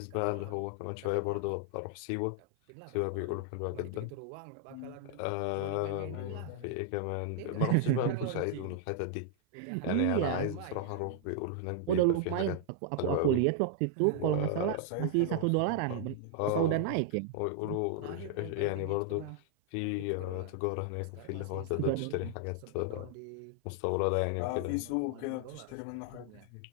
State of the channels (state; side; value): different; both; correlation 0.00